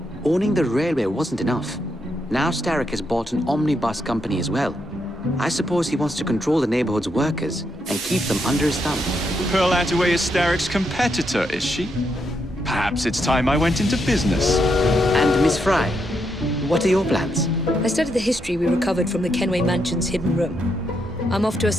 Owning the railway wasn't enough. Now Starrick has bought an omnibus company as well. I suppose he wants to control the neighborhood's workers and keep them under his thumb. Pearl Attaway is Starrick's competitor, is she? Perhaps it's time I went into business. And Miss Fry, what are your plans? I studied the history we recovered from the Kenway Mansion's hidden room. I'm off to a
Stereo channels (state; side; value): normal; both; correlation 0.80